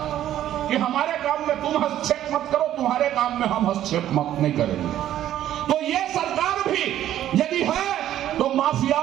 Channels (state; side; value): quieter; left; 12.0 dB